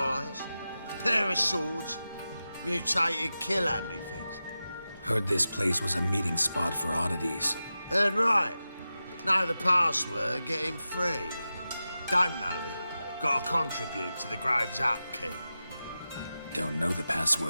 pair of swords, mutated kill at me things. Heard this place was a meeting spot for oddities. Heard right. Know the password, get him free. Don't know it. Gotta contribute to the Grove's upkeep. Don't know the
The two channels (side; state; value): both; inverted; correlation -0.93